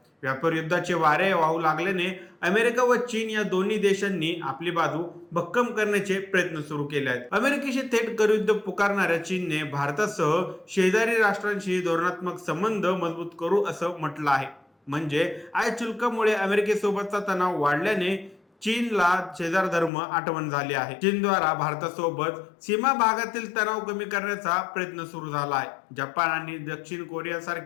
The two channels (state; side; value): drops out; right; at 19.9 s